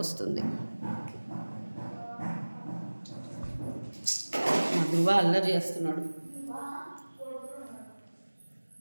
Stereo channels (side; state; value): both; inverted; correlation -1.00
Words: వస్తుంది. మా ధృవ అల్లరి చేస్తున్నాడు.